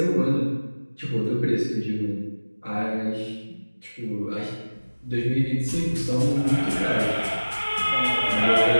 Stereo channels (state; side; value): inverted; both; correlation -1.00